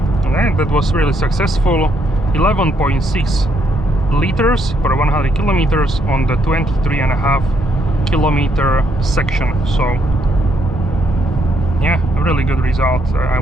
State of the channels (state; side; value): normal; both; correlation 0.74